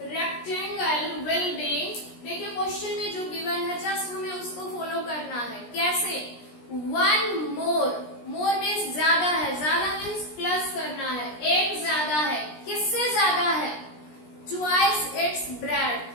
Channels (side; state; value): right; late; 17 ms